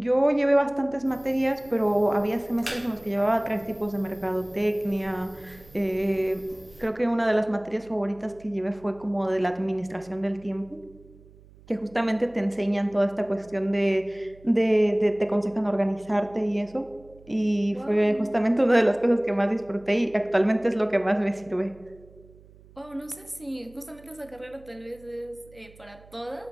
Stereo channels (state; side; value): noise; right; hum, 24 dB below the sound